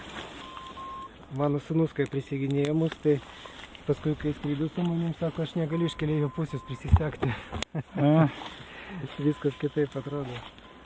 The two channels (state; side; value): identical; both; correlation 1.00